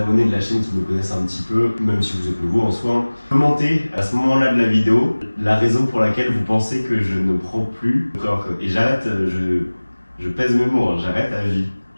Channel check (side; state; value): both; inverted; correlation -1.00